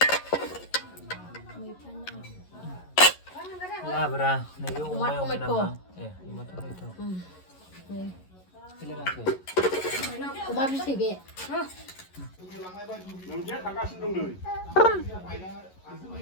लाब्रा नैबे अमायाव नामा अमा टमेट' अमा बिथै बे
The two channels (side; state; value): right; late; 11 ms